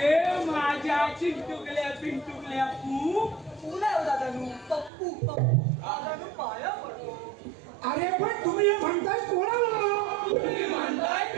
माझ्या चिंटुकल्या पिंटुकल्या पू अरे पण तुम्ही हे म्हणताय कोणाला? तुम्ही म्हणताय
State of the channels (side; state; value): left; drops out; at 4.9 s